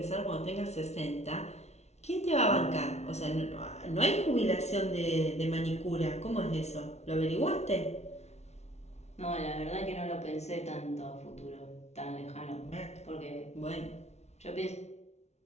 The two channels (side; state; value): right; late; 0.32 ms